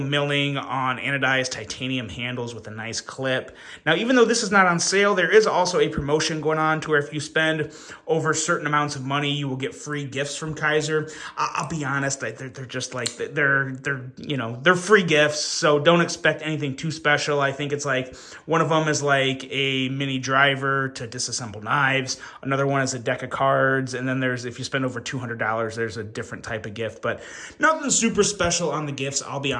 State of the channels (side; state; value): both; identical; correlation 1.00